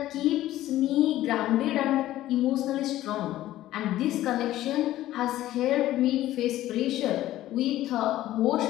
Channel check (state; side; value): quieter; right; 14.5 dB